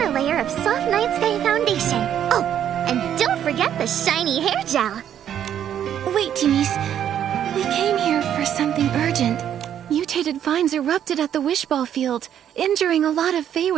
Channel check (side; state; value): left; quieter; 9.9 dB